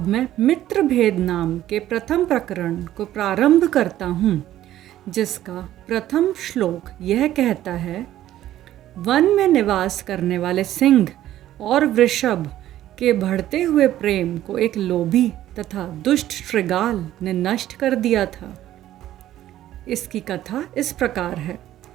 मैं मित्र भेद नाम के प्रथम प्रकरण को प्रारंभ करता हूँ, जिसका प्रथम श्लोक यह कहता है, वन में निवास करने वाले सिंह और वृषभ के बढ़ते हुए प्रेम को एक लोभी तथा दुष्ट श्रृगाल ने नष्ट कर दिया था। इसकी कथा इस प्रकार है।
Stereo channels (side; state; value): left; quieter; 13.1 dB